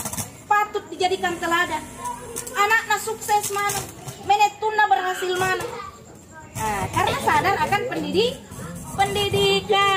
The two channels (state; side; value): identical; both; correlation 1.00